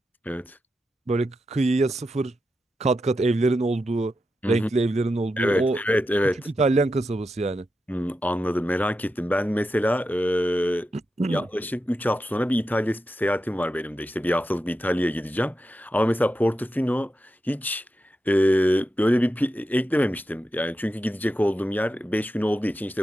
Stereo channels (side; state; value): both; normal; correlation 0.88